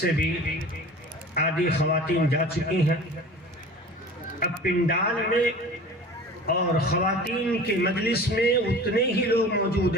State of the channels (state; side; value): normal; both; correlation 0.40